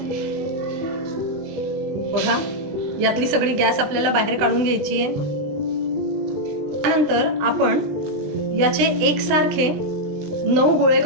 बघा, यातली सगळी गॅस आपल्याला बाहेर काढून घ्यायची आहे. त्यानंतर आपण याचे एकसारखे 9 गोळे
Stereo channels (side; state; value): left; late; 20 ms